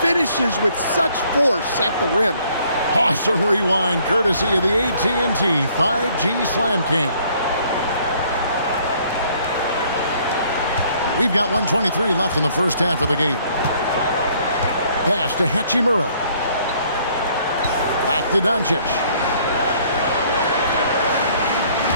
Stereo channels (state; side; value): inverted; both; correlation -0.62